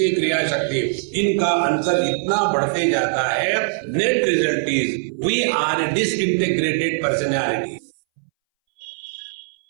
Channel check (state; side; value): silent; left; 63 dB below the other